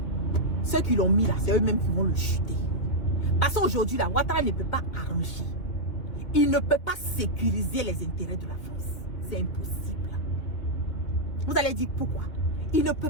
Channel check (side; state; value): right; late; 2.9 ms